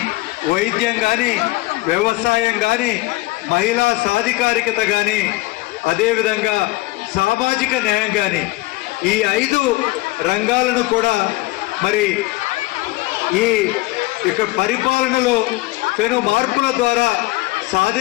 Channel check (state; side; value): quieter; right; 20.3 dB